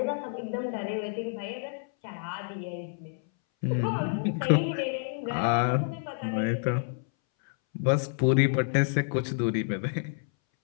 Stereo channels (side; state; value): right; silent; 59 dB below the other